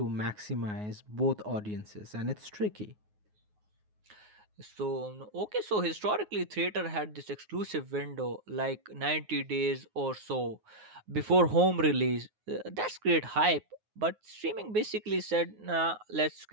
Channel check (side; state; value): left; late; 9.5 ms